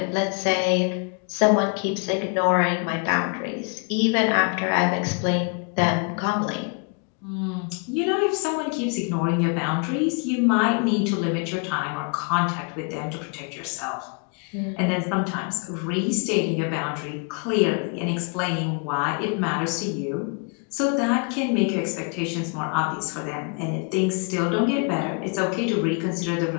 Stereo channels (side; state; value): right; quieter; 36.6 dB